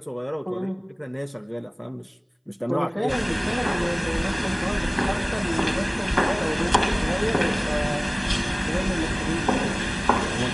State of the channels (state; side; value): identical; both; correlation 1.00